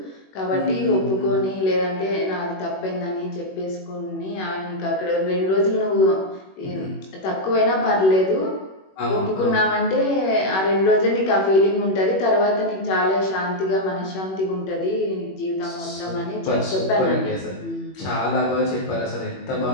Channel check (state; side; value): late; right; 21 ms